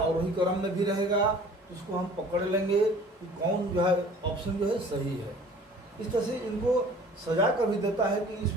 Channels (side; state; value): both; normal; correlation 0.49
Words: क्रम में भी रहेगा, उसको हम पकड़ लेंगे कि कौन जो है ऑप्शन जो है सही है। इस तरह से इनको सजा कर भी देता है कि